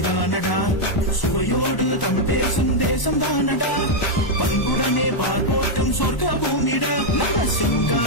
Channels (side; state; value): right; late; 1.0 ms